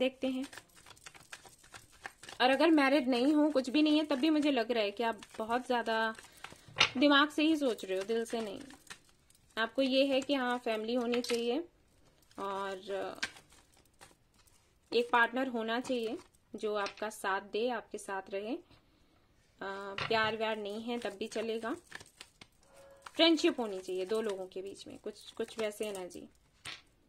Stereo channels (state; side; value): identical; both; correlation 1.00